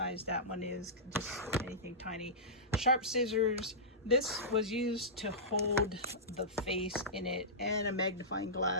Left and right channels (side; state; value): both; normal; correlation -0.16